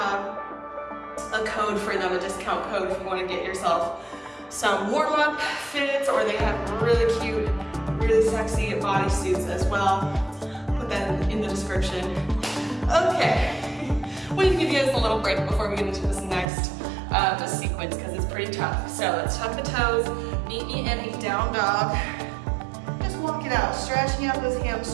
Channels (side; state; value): left; drops out; at 16.4 s